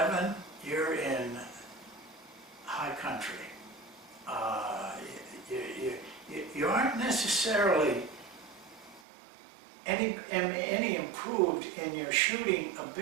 you're in high country. You aren't necessarily any improved in your shooting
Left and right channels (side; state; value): left; drops out; at 9.0 s